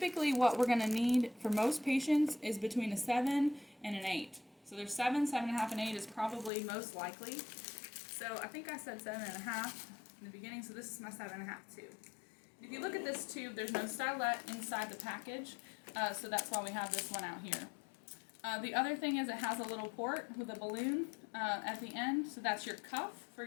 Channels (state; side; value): drops out; right; at 6.5 s